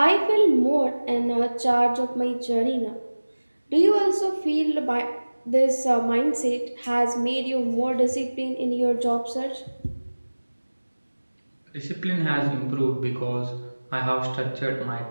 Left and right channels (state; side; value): inverted; both; correlation -1.00